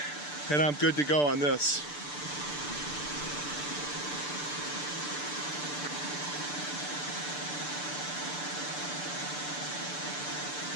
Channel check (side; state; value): right; late; 6.8 ms